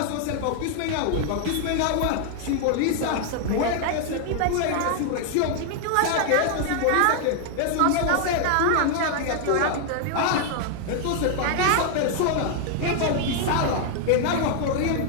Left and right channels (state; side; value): different; both; correlation 0.00